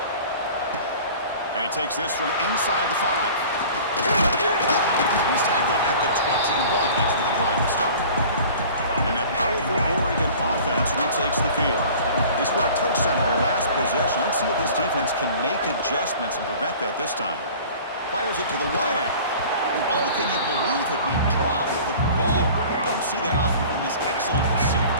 And he takes this from inside the 5. He's tackled at the 21. That's where the drive will start. And that powerful Oregon offense retakes the field. They scored a touchdown in their last possession. Let's see if this defense can make adjustments and prevent that this time. Fires it to the wideout. Oh, can you believe it? He dropped the ball. Don't see that often from this excellent receiver.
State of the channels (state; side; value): inverted; both; correlation -0.44